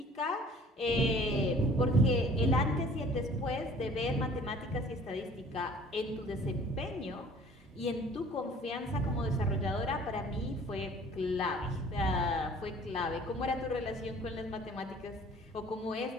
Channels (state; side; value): normal; both; correlation 0.51